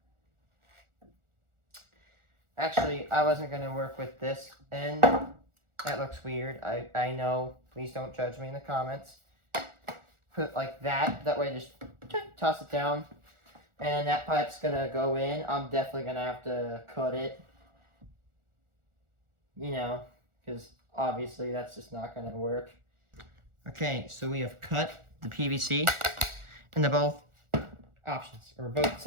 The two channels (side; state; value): left; late; 1.4 ms